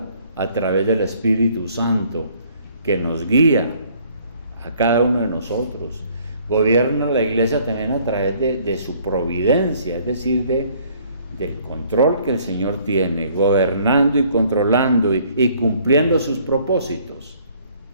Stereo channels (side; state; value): both; inverted; correlation -0.61